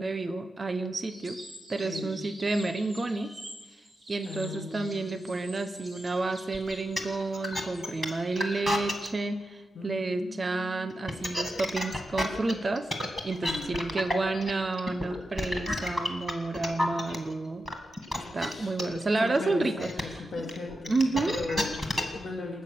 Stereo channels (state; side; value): normal; both; correlation 0.89